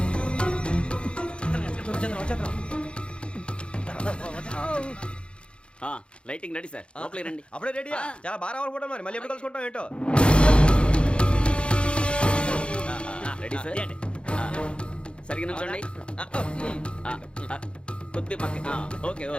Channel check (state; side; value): late; right; 0.056 ms